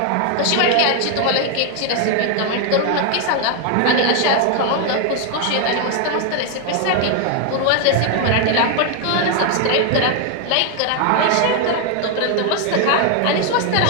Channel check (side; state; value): both; different; correlation 0.01